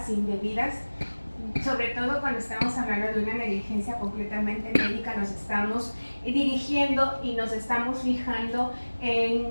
indebidas, sobre todo cuando estamos hablando de una negligencia completamente médica. Nos estamos dirigiendo y nos estamos fijando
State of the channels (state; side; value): inverted; both; correlation -1.00